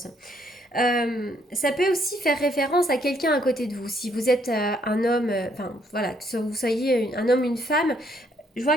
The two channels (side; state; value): both; normal; correlation 0.69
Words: Ça peut aussi faire référence à quelqu'un à côté de vous. Si vous êtes un homme, enfin voilà, que vous soyez un homme, une femme, je